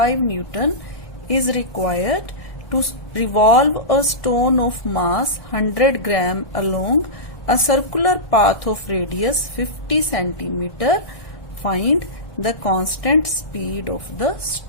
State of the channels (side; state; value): right; late; 1.3 ms